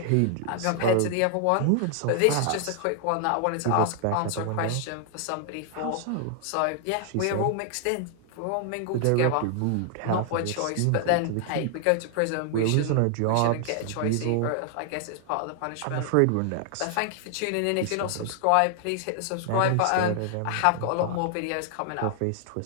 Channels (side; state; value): both; different; correlation 0.00